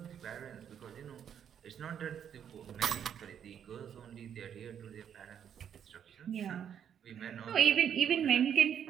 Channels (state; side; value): quieter; left; 8.7 dB